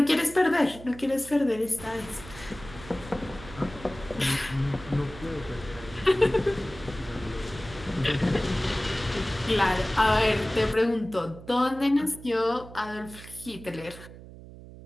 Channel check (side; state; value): right; noise; hum, 16 dB below the sound